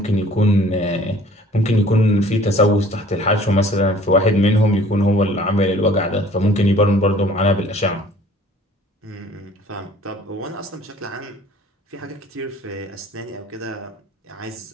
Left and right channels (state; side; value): normal; both; correlation 0.52